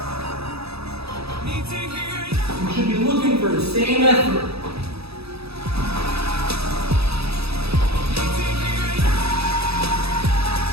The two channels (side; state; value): left; late; 0.78 ms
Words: You should be looking for the same effort.